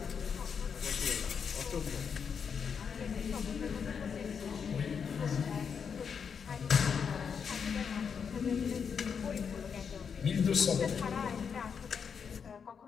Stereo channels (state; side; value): quieter; right; 6.6 dB